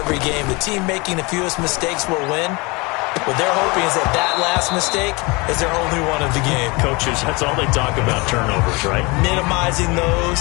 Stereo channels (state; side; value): quieter; right; 26.4 dB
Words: game, the team making the fewest mistakes will win. What they're hoping is that last mistake is their only one of the game. Coaches, that's all they talk about, turnovers, right? Minimizing